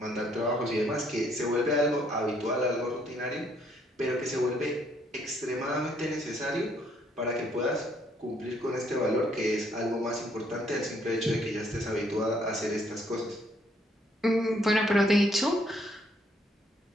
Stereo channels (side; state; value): both; normal; correlation 0.67